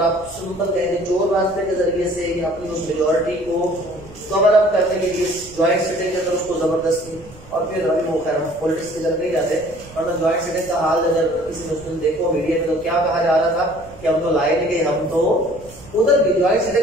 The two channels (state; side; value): noise; right; rumble, 21 dB below the sound